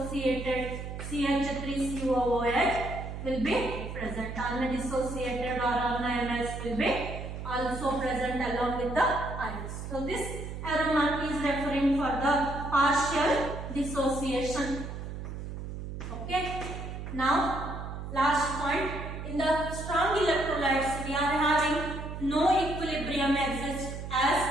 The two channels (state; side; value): noise; right; hum, 8 dB below the sound